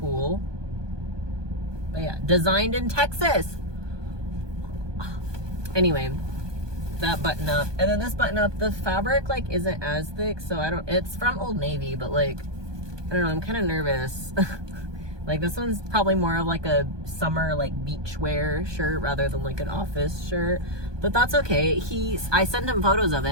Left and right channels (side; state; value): left; late; 1.2 ms